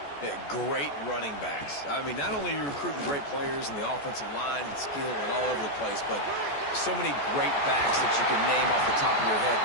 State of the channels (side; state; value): right; late; 14 ms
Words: Yeah, great running backs. I mean, not only are you recruiting great players in the offensive line and skill and all over the place, but so many great backs that you can name off the top of your head